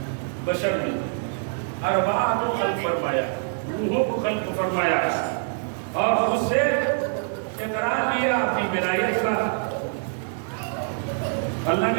بشر میں ارواح کو خلق فرمایا, روحوں کو خلق فرمایا, اور اس سے اقرار لیا اپنی ولایت کا. اللہ نے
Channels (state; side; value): silent; left; digital silence